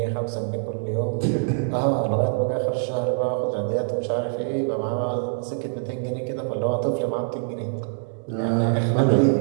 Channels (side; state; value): left; silent; digital silence